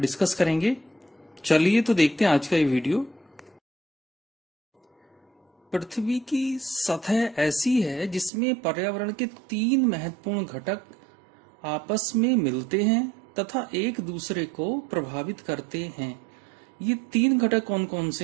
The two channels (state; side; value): drops out; left; at 8.3 s